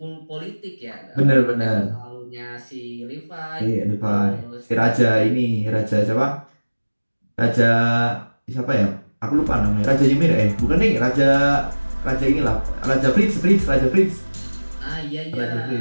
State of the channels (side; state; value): both; inverted; correlation -1.00